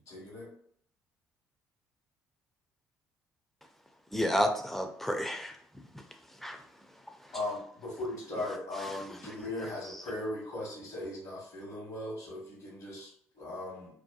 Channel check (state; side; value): normal; both; correlation 0.72